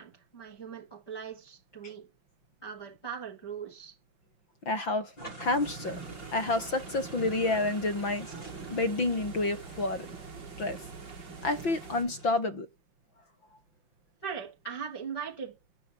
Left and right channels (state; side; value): late; right; 5.9 ms